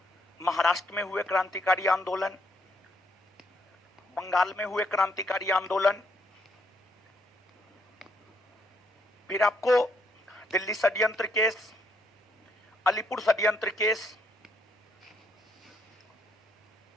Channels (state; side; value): normal; both; correlation 0.73